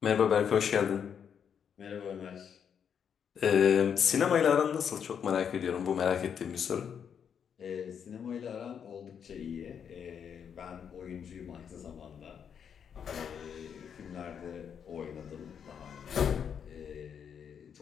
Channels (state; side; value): quieter; right; 7.7 dB